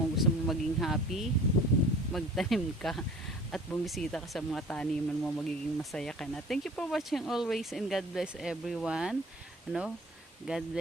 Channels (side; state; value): both; normal; correlation 0.47